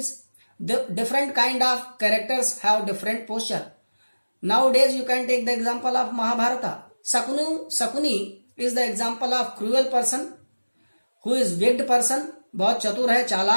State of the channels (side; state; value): both; inverted; correlation -1.00